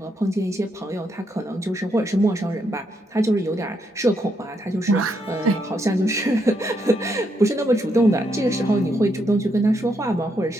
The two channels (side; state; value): both; normal; correlation 0.78